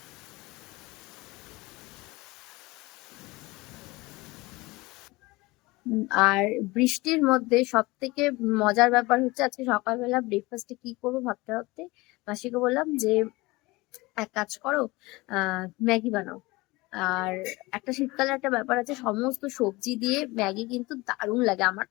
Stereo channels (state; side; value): quieter; right; 22.2 dB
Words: আর বৃষ্টির মধ্যে সব থেকে মজার ব্যাপার হচ্ছে আজকে সকালবেলা ব্রেকফাস্টে কি করবো ভাবতে ভাবতে মাসিকে বললাম যে এক কাজ করো, ম্যাগি বানাও। আর একটা শীতকালে একটা ব্যাপার আছে, সমস্ত সবজি দিয়ে ম্যাগি কিন্তু দারুণ লাগে, আমার